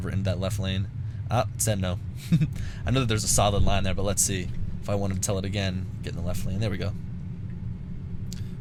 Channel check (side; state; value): both; identical; correlation 1.00